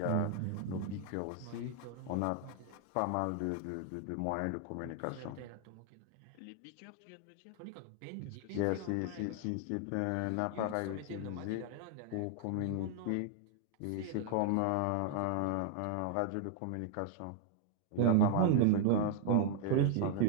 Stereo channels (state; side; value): different; both; correlation 0.00